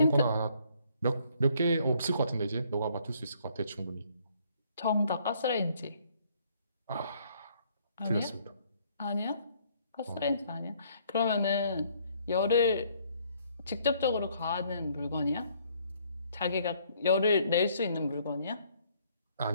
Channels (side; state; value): both; inverted; correlation -0.65